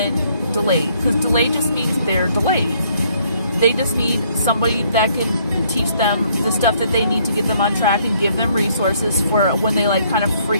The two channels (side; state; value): both; inverted; correlation -0.66